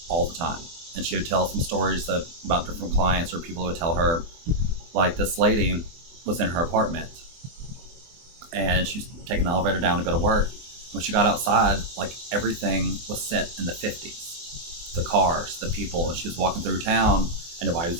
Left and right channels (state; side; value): late; left; 24 ms